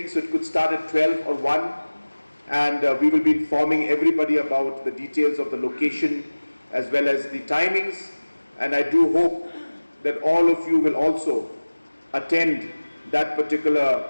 so it could start at 12 or 1, and we will be informing everybody about the details of the location as well as the timings, and I do hope that all of you will also attend that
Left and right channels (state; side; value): inverted; both; correlation -1.00